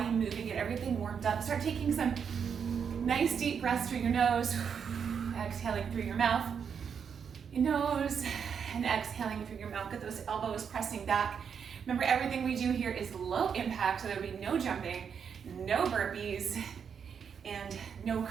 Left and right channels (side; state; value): left; quieter; 7.0 dB